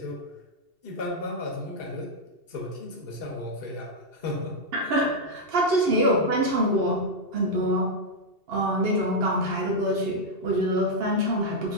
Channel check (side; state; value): left; late; 2.7 ms